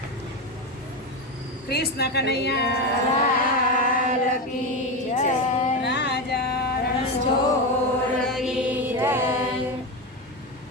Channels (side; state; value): both; normal; correlation 0.16